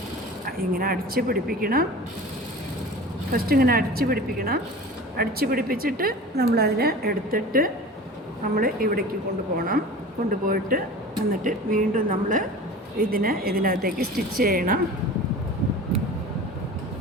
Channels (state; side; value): normal; both; correlation 0.37